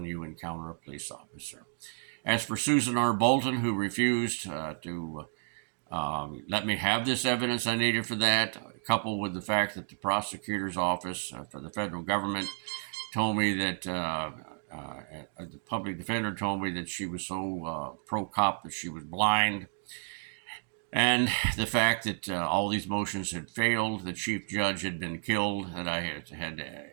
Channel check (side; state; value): left; silent; digital silence